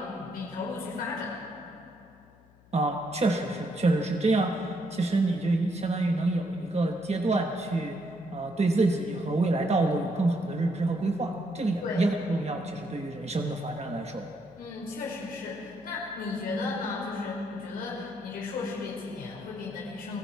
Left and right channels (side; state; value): left; noise; hum, 27 dB below the sound